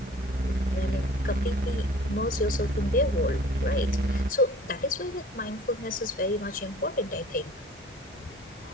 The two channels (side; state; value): both; normal; correlation 0.48